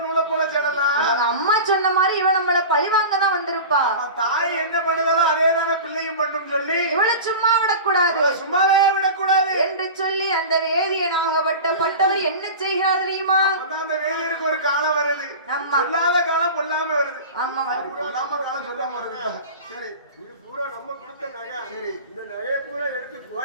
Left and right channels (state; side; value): inverted; both; correlation -0.32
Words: நூலை போல செல்லலாம். அவங்க அம்மா சொன்ன மாதிரி இவன் நம்மள பழிவாங்க தான் வந்திருப்பா. தாய் என்ன பண்ணுதாலும் அதே தானே பிள்ளையும் மட்டும் சொல்லி இவளை சும்மா விடக்கூடாது, சும்மாவே விடக்கூடாது என்று சொல்லி அந்த வேதியனாகப்பட்டவர் என்ன செய்கிறார் தெரியுமா? அந்த வேதியருக்கு ஒரு காலம் வருது. சொல்லாத காலம் பொல்லாம வருது. ஆமா, பொல்லாம காலம் சொல்லாம வருது. சரி, இது பூரா நம்ம கொடுத்த நகை. சரி, இந்த நகையை பூரா எடுத்து